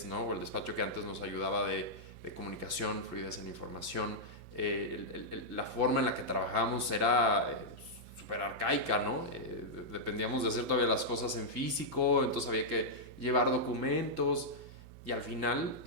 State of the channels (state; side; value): late; left; 5.9 ms